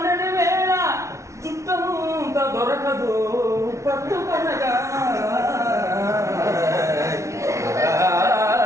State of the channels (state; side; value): late; left; 0.14 ms